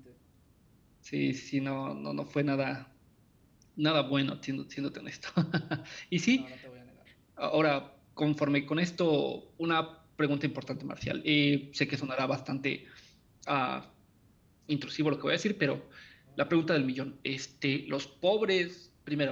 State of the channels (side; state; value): both; identical; correlation 1.00